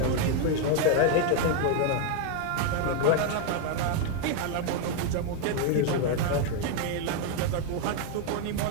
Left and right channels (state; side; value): different; both; correlation 0.01